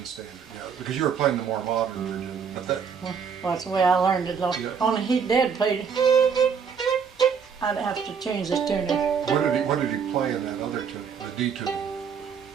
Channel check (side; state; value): left; quieter; 6.5 dB